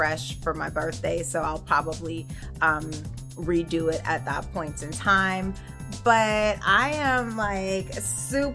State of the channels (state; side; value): identical; both; correlation 1.00